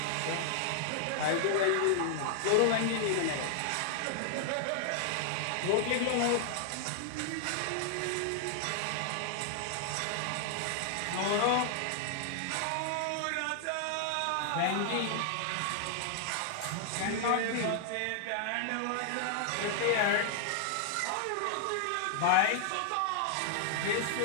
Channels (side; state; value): both; different; correlation -0.01